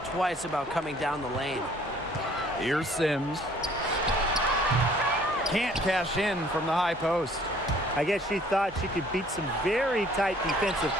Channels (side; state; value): both; normal; correlation 0.57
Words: twice about coming down the lane. Here's Sims. Can't cash in from the high post. I guess she thought she could beat some very tight defensive